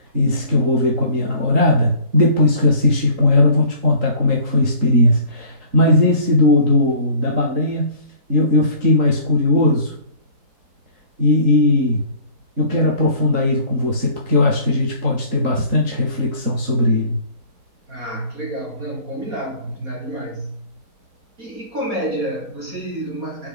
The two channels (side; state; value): left; late; 3.9 ms